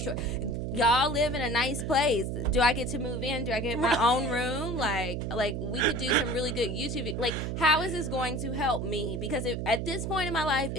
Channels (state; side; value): noise; right; hum, 3 dB below the sound